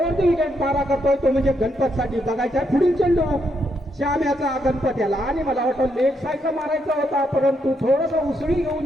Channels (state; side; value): normal; both; correlation 0.78